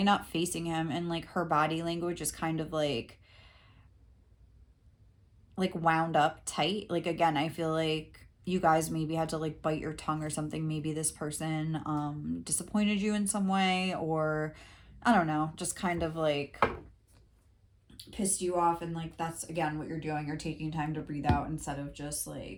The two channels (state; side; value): identical; both; correlation 1.00